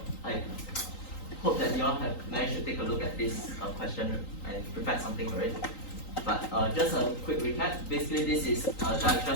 I hope that you all have managed to take a look at this question and prepare something for it. But just a quick recap. Basically, this is a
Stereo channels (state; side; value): late; right; 3.9 ms